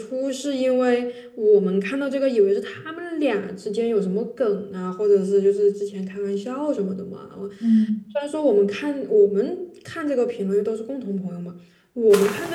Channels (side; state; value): both; identical; correlation 1.00